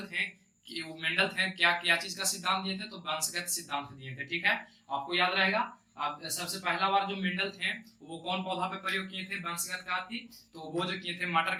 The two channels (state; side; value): identical; both; correlation 1.00